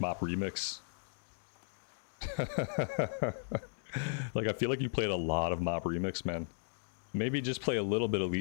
Remix. Like, I feel like you played a lot of Mop Remix, man. Maybe just play a little bit of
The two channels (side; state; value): right; silent; digital silence